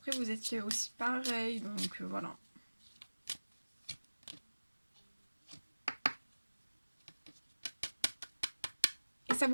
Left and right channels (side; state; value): both; inverted; correlation -1.00